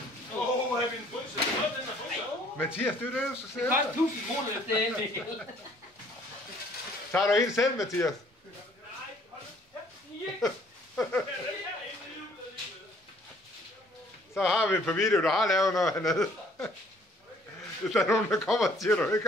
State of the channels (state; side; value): normal; both; correlation 0.59